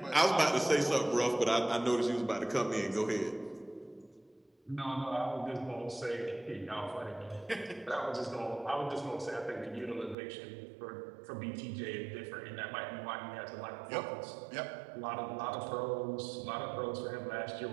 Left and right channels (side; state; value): left; drops out; at 10.2 s